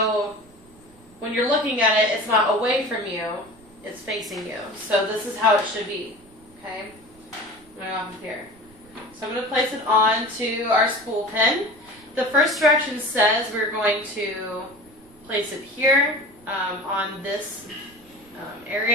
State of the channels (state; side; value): noise; right; rumble, 27 dB below the sound